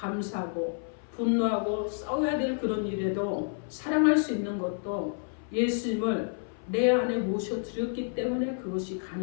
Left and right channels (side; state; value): right; silent; 55 dB below the other